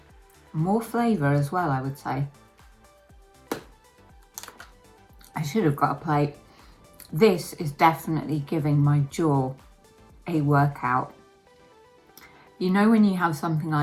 More flavour as well, I would say. I should have got a plate. This is definitely giving my jaw a workout. You know when you have something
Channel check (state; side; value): identical; both; correlation 1.00